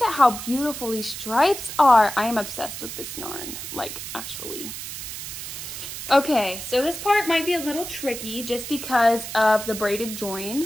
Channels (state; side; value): noise; right; hiss, 8 dB below the sound